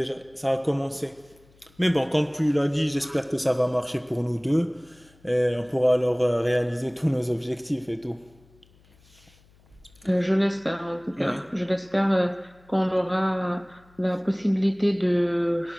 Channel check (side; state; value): left; noise; hum, 30 dB below the sound